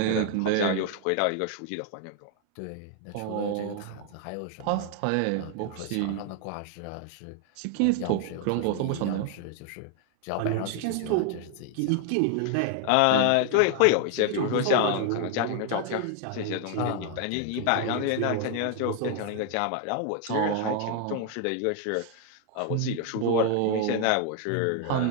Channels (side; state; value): both; different; correlation 0.00